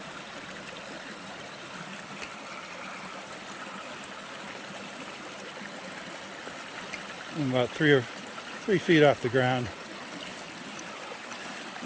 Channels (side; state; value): both; identical; correlation 1.00